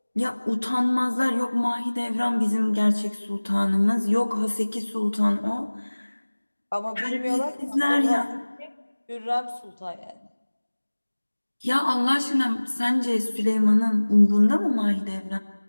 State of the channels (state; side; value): inverted; both; correlation -1.00